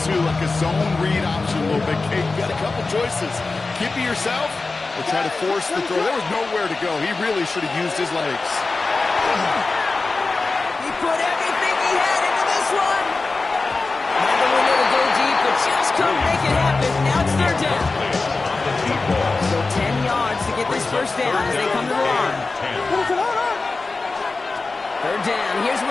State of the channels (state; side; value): quieter; right; 3.7 dB